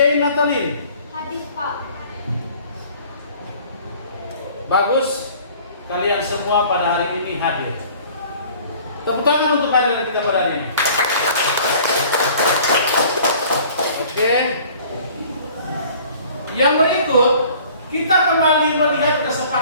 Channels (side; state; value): both; inverted; correlation -0.50